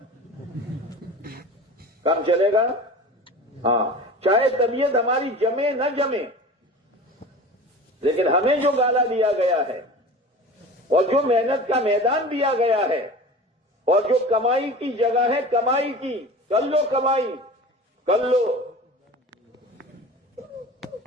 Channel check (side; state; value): both; normal; correlation 0.36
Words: کام چلے گا۔ ہاں، چاہے طبیعت ہماری جمے نہ جمے، لیکن ہمیں جو گالا دیا گیا ہے اور جو محنت کا میدان دیا گیا ہے اور جو کمائی کی جگہ ہے، کمائی کی، کر لو کمائی، کر لو،